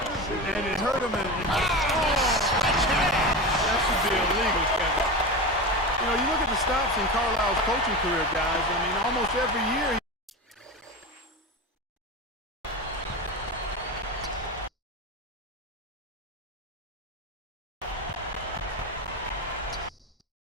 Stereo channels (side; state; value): both; normal; correlation 0.24